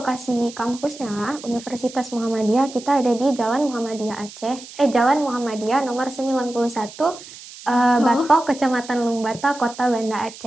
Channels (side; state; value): right; noise; hiss, 16 dB below the sound